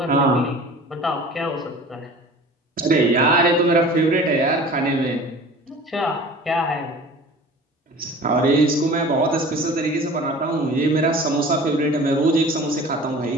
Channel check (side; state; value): both; normal; correlation 0.42